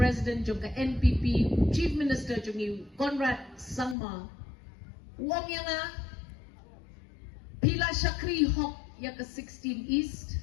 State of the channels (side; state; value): right; drops out; at 4.0 s